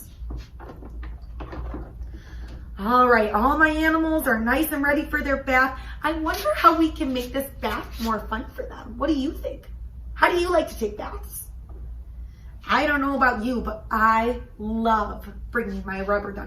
All right, all my animals are nice and ready for their bath. I wonder how we can make this bath more fun for them. What do you think? How do you like to take baths? I don't know about you, but I love bringing my rubber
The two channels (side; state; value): both; identical; correlation 1.00